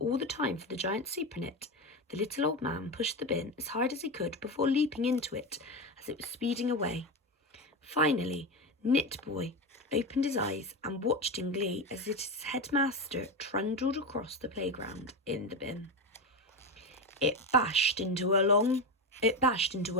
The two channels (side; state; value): both; normal; correlation 0.17